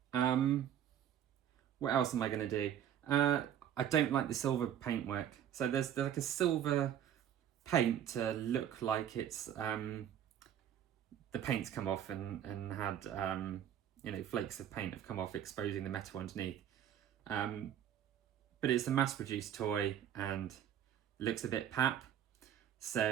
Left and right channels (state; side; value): quieter; left; 10.1 dB